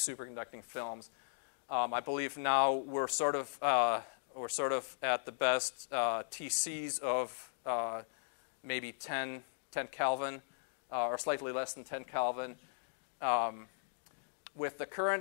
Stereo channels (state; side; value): silent; right; digital silence